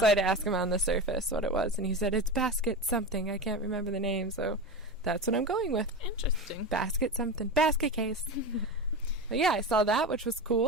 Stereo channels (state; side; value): normal; both; correlation 0.23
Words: I had to ask him on the surface what it was, and he said, it's basket something. I can't remember the name, so that's what I'm going with. Interesting. Basket something. Basket case. But yeah, I saw that, which was